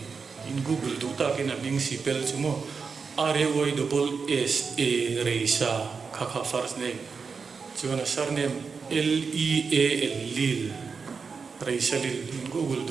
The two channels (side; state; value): left; quieter; 5.3 dB